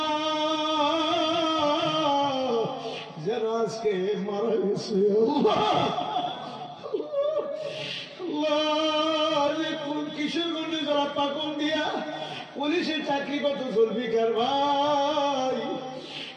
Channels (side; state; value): both; identical; correlation 1.00